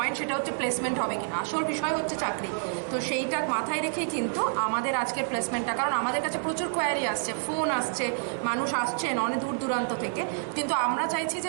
সেটা হচ্ছে প্লেসমেন্ট হবে কিনা আসল বিষয় হচ্ছে চাকরি তো সেইটা মাথায় রেখেই কিন্তু আমাদের আজকের প্লেসমেন্টটা কারণ আমাদের কাছে প্রচুর কোয়ারি আসছে ফোন আসছে মানুষ আসছেন অনেক দূর দূরান্ত থেকে কিন্তু আমরা চাইছি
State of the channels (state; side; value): silent; left; 59 dB below the other